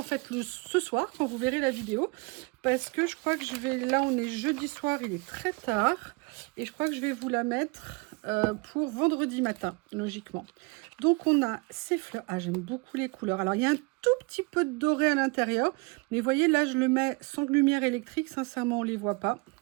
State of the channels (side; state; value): left; quieter; 28.9 dB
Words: fait ce soir, quand vous verrez la vidéo. Parce que je crois que je vais... Là, on est jeudi soir, il est très tard. Et je crois que je vais vous la mettre pour vendredi matin, logiquement. Donc, on a ces fleurs. Ah, j'aime beaucoup les couleurs. Alors, il y a un tout petit peu de doré à l'intérieur. Mais vous voyez, là, je le mets sans lumière électrique. Sincèrement, on ne les voit pas.